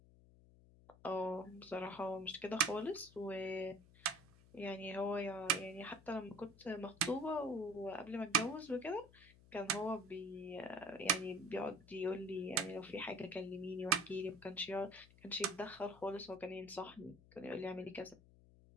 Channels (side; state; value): left; noise; hum, 23 dB below the sound